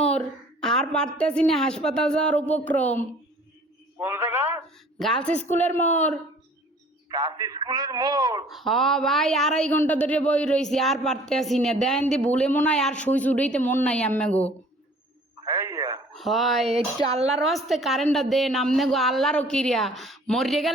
আর পারতেছি না, হাসপাতাল যাওয়ার উপক্রম। কোন জায়গা? গার্লস স্কুলের মোড়। কাশি স্কুলের মোড়। হ ভাই, 2.5 ঘন্টা ধরে বই রয়েছি, আর পারতেছি না। দেন দি ভুলে মনে হয় আর সুই চুড়াইতে মন নাই আম্মে গো। হ্যাঁ, হয় একটু আল্লাহর হস্তে কারেন্টটা দেন আমনে গো, আল্লাহরও কিরিয়া। মরিয়ে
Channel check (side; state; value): both; normal; correlation 0.52